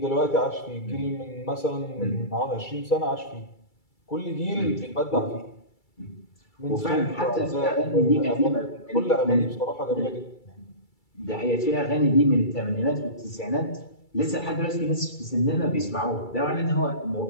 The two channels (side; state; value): right; late; 2.3 ms